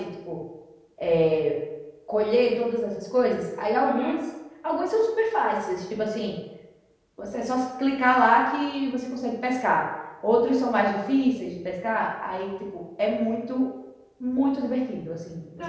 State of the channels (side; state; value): both; identical; correlation 1.00